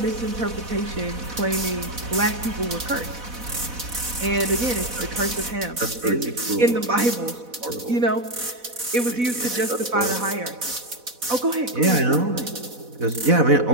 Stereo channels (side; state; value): left; late; 4.1 ms